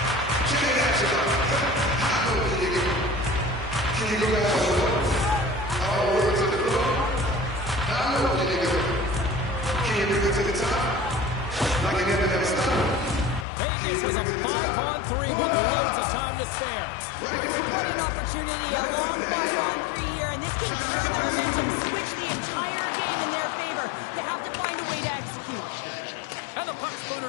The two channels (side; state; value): right; drops out; at 13.5 s